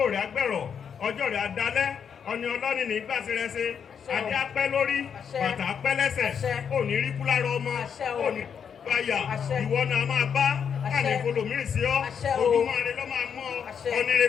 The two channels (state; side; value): quieter; right; 7.3 dB